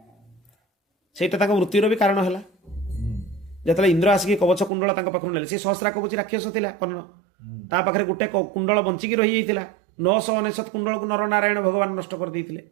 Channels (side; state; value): left; drops out; at 4.7 s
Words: सेटा तांको मृत्युर भी कारण हैला। जतले इंद्र आसिक कवच कुंडल तांको पाखरु नेले, से सहस्रा कवच राक्षस थिला कर्ण, ता पाखरे गुटे कुंडल बंचिकी रही जाइतिला। 999 कुंडल को नर नारायण भगवान नष्ट कर देइतिले।